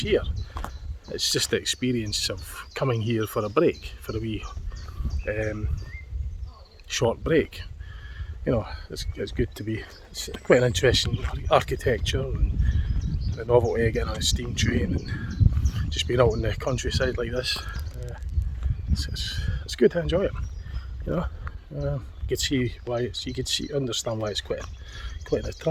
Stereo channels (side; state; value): both; identical; correlation 1.00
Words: it's just the experience of coming here for a break, for a wee short break. You know, it's good to be. It's quite an interesting architecture and the novelty of getting on a steam train and just being out in the countryside like this. It's good to enjoy it. You know, you can see why understand why it's quite an